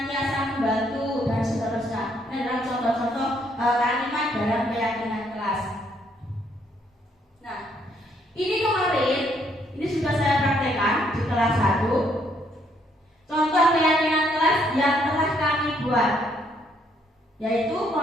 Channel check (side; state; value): both; normal; correlation 0.70